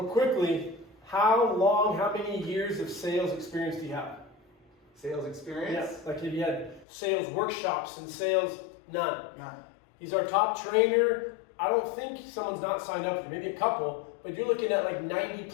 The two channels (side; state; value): right; drops out; at 6.9 s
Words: quickly, how many years of sales experience do you have? Sales experience? Yeah, like if you had sales workshops and sales, none. None. He's our top trainer. I don't think someone's not signed up for, maybe a couple, but you're looking at like